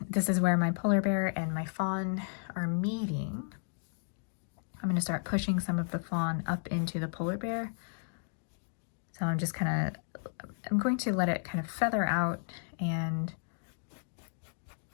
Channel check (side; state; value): right; silent; digital silence